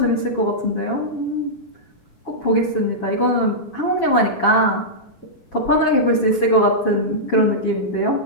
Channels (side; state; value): right; late; 7.2 ms